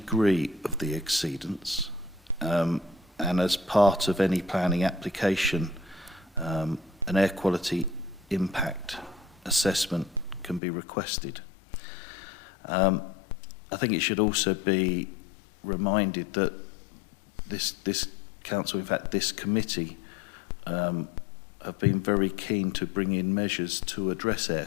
of the exceedance. And as part of any planning application, an air quality impact assessment can be requested. I think it should also be reminded that this council, in fact this committee, have been very keen to bring in measures to address air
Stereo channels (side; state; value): right; drops out; at 10.6 s